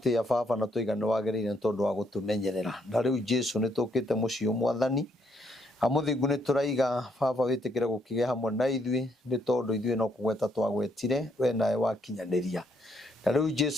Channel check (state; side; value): normal; both; correlation 0.73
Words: baba na tuigana wagirire tondu wa gutumenyerera na riu Jesu ni tukite mucio mwathani amuthingu ni turaiga baba witikire gukige hamwe na ithui ni tondu ithui no kugweta twagwetire we nae wakinyaniria na riu